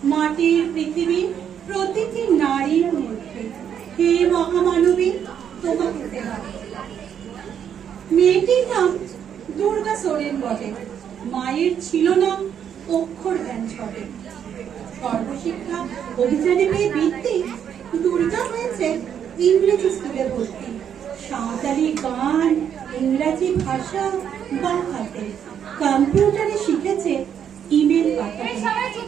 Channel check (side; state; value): left; quieter; 8.6 dB